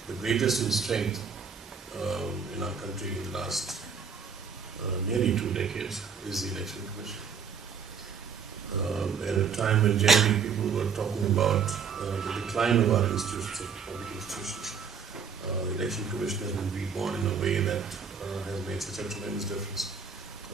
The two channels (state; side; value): quieter; left; 6.2 dB